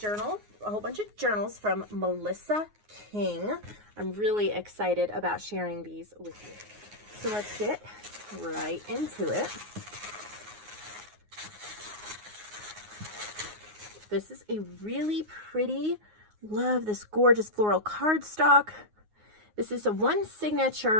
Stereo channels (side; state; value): left; late; 9.6 ms